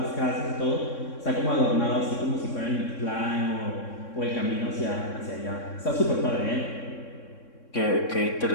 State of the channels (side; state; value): right; late; 3.6 ms